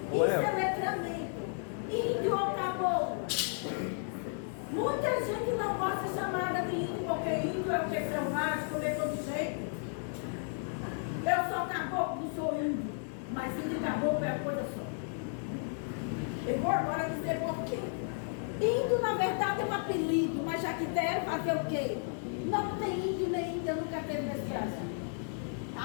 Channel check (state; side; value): silent; right; 55 dB below the other